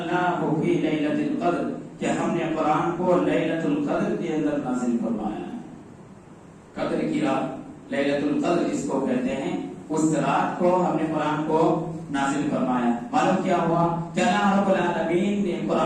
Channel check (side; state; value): both; identical; correlation 1.00